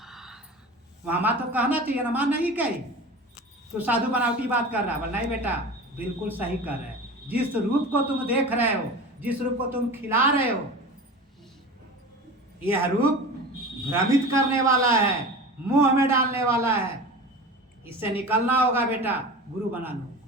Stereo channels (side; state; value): both; normal; correlation 0.34